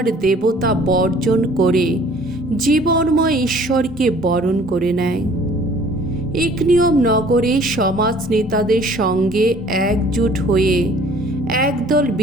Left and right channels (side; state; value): both; normal; correlation 0.53